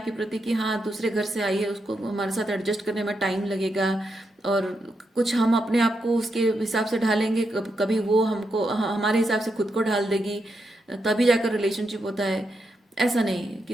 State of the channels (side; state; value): both; normal; correlation 0.83